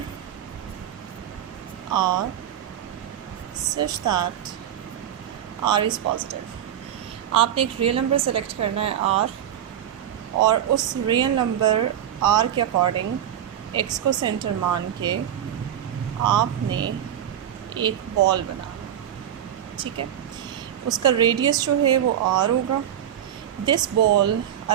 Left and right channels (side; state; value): left; quieter; 10.4 dB